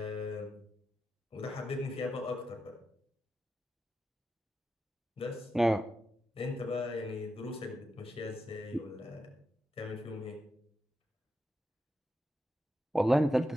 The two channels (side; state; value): both; normal; correlation 0.88